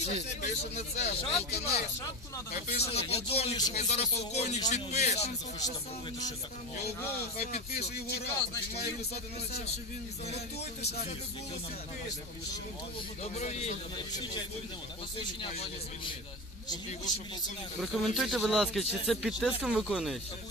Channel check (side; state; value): both; normal; correlation 0.23